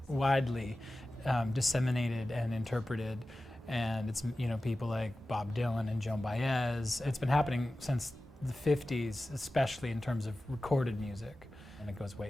widely disseminated and interpreted, and it's people like Bob Dylan and Joan Baez. It's been happening since the 50s, especially in terms of recorded music, and it goes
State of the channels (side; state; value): both; normal; correlation 0.95